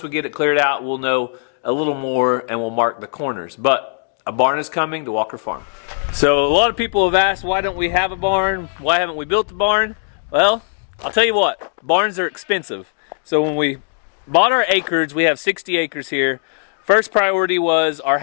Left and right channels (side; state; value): right; silent; 64 dB below the other